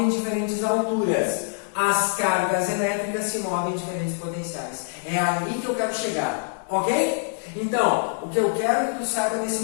em diferentes alturas. As cargas elétricas se movem em diferentes potenciais. É ali que eu quero chegar, ok? Então, o que eu quero que tu saiba nesse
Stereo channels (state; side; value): silent; right; 62 dB below the other